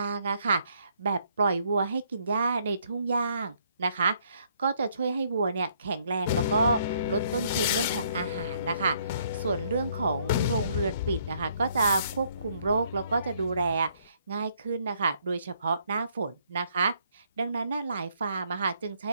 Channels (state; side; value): inverted; both; correlation -0.68